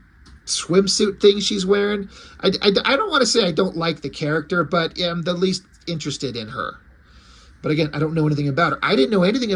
thing she's wearing. I don't want to say I don't like the character, but I'm the least interested in her. But again, I don't know anything about her. I didn't know anything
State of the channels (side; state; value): both; identical; correlation 1.00